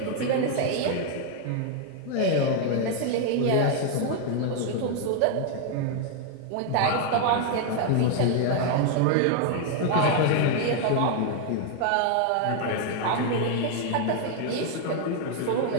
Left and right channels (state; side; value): different; both; correlation 0.00